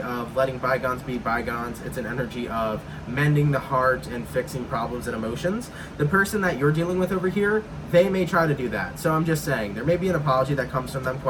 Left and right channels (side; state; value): both; identical; correlation 1.00